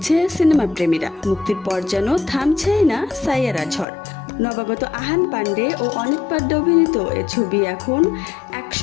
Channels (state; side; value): drops out; right; at 3.9 s